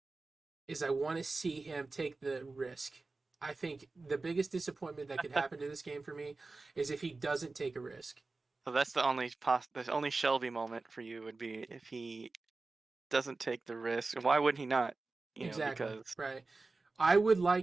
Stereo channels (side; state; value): left; quieter; 3.6 dB